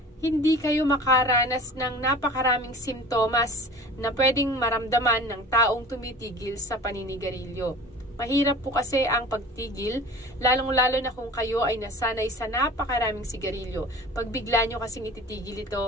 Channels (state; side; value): normal; both; correlation 0.41